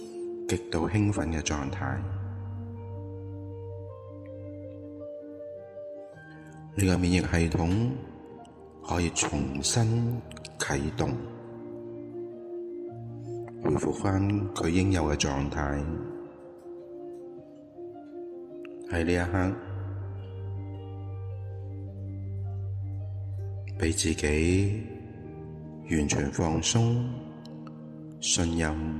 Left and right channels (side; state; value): both; identical; correlation 1.00